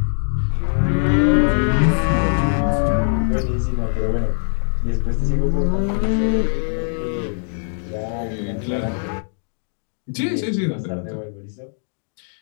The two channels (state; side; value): silent; right; digital silence